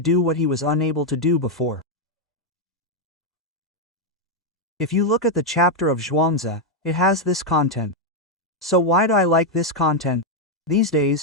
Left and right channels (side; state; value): both; normal; correlation 0.01